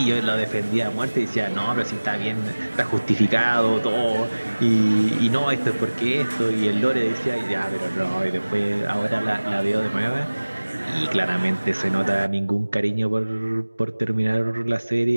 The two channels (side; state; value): both; inverted; correlation -1.00